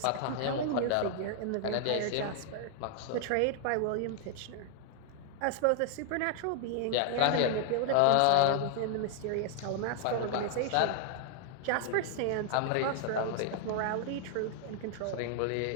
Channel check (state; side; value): different; both; correlation 0.00